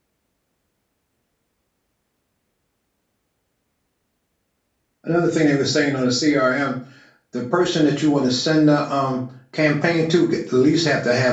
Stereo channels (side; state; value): both; identical; correlation 1.00